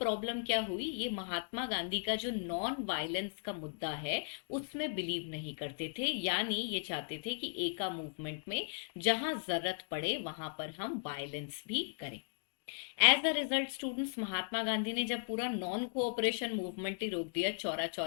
क्या हुई, ये महात्मा गांधी का जो नॉन वायलेंस का मुद्दा है उसमें बिलीव नहीं करते थे। यानी ये चाहते थे कि एका मूवमेंट में जहां जरूरत पड़े वहां पर हम वायलेंस भी करें। As a result students, Mahatma Gandhi ने जब पूरा नॉन कोऑपरेशन मूवमेंट ही रोक दिया चौरा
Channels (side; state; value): right; silent; digital silence